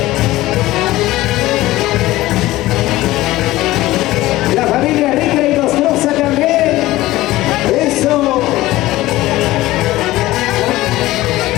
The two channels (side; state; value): right; quieter; 17.2 dB